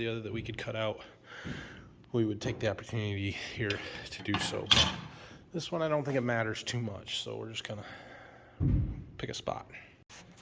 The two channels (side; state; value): both; identical; correlation 1.00